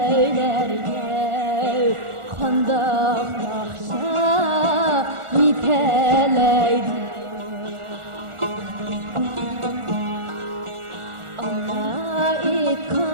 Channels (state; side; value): late; left; 1.4 ms